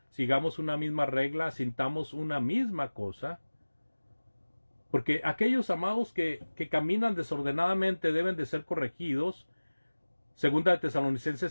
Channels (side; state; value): both; inverted; correlation -1.00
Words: sigamos una misma regla, sintamos una misma cosa. Porque aquellos amados que caminan desordenadamente deben de ser corregidos. Segunda de